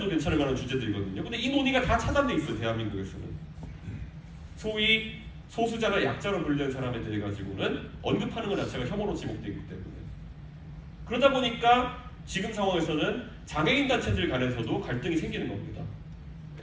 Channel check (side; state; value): both; identical; correlation 1.00